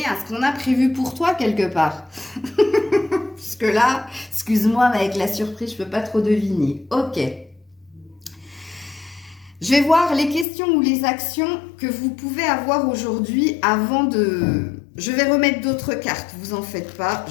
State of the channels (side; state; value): right; drops out; at 10.5 s